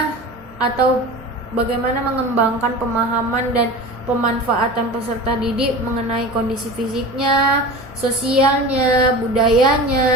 mengembangkan pemahaman dan pemanfaatan peserta didik mengenai kondisi fisiknya, sosialnya,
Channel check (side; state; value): right; noise; hum, 26 dB below the sound